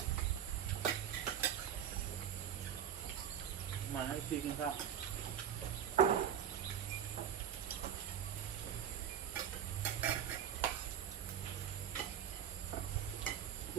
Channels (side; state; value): left; quieter; 9.1 dB